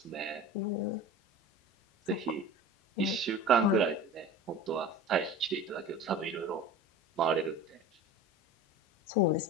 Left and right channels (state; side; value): normal; both; correlation 0.35